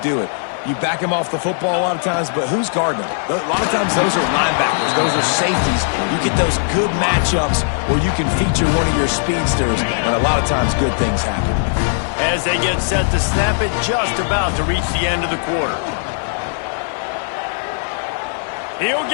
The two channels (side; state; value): right; silent; 56 dB below the other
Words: do it. You back them off the football a lot of times, but who's guarding them? A lot of times those are linebackers. Those are safeties. You get those good matchups where you can feature one of your speedsters, and a lot of times good things happen. As they get set to snap it, just about to reach the end of the quarter. He'll